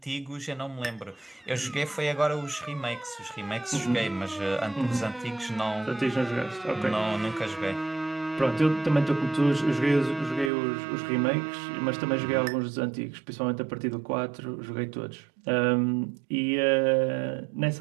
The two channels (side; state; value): left; drops out; at 10.5 s